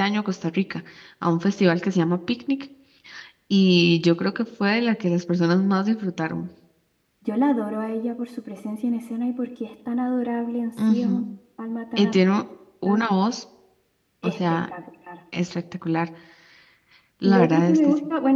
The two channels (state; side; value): identical; both; correlation 1.00